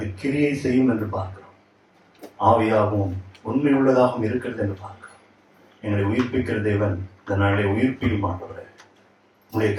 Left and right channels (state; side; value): identical; both; correlation 1.00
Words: கிரியை செய்யும் என்று பார்க்கிறோம். ஆவியாகவும் உண்மை உள்ளதாகவும் இருக்கிறது என்று பார்க்கிறோம். எங்களை உயிர்ப்பிக்கிற தேவன் இந்த நாளை உயிர்ப்பிக்க மாட்டவரே, உங்களுடைய